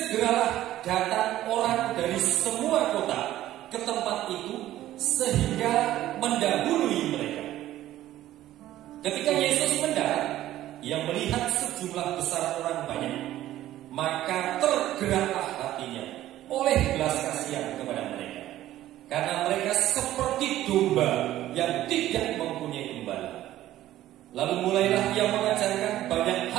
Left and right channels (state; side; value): quieter; left; 13.9 dB